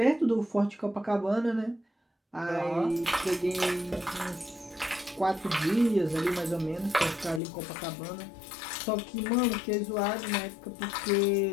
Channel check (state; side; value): drops out; right; at 7.4 s